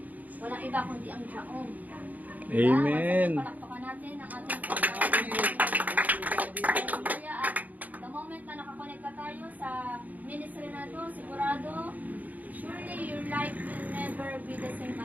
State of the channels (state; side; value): late; left; 0.079 ms